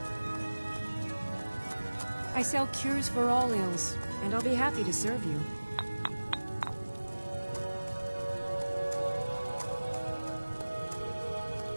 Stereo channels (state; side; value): inverted; both; correlation -1.00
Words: I sell cures for all ills, and I'll be happy to serve you.